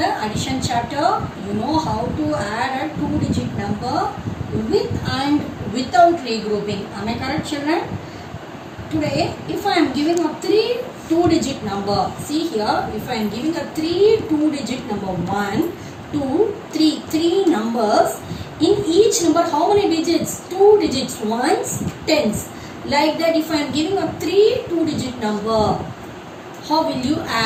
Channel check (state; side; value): identical; both; correlation 1.00